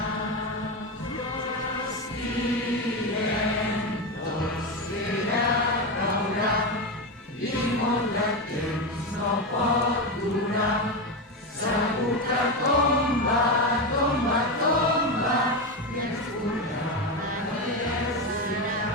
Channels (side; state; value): both; normal; correlation 0.14